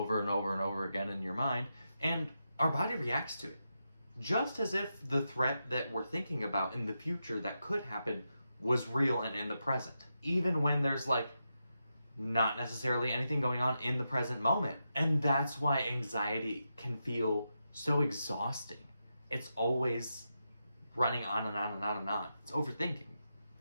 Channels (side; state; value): both; inverted; correlation -0.87